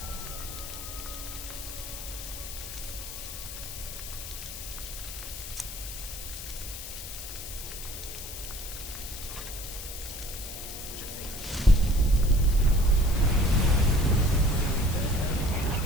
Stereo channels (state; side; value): noise; left; hiss, 9 dB below the sound